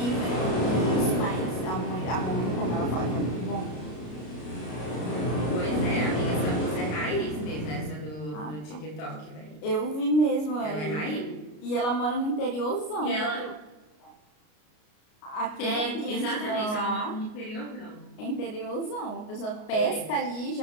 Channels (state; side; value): late; right; 33 ms